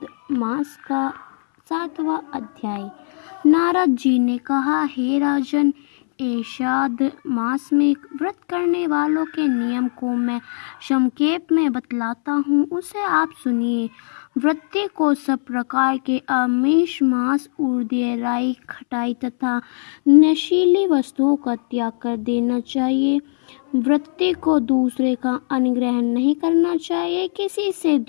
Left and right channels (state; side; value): silent; right; 66 dB below the other